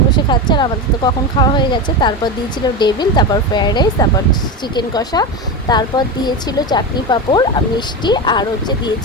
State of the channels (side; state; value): both; normal; correlation 0.19